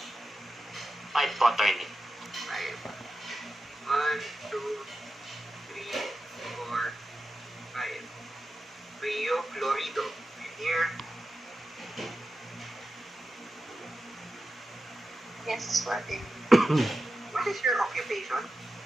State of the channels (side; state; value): both; normal; correlation 0.92